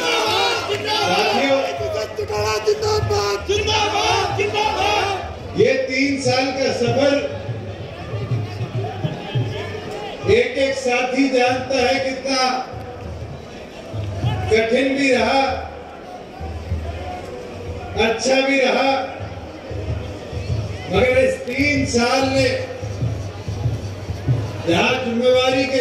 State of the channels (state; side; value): identical; both; correlation 1.00